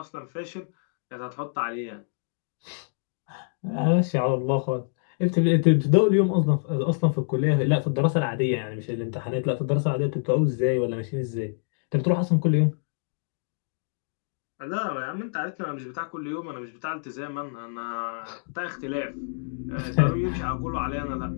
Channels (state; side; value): silent; right; digital silence